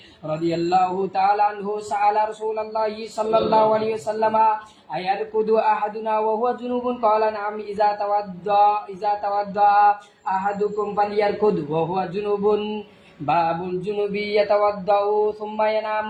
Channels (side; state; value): both; identical; correlation 1.00